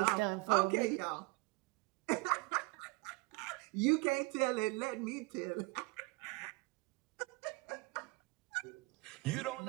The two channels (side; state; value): left; quieter; 25.5 dB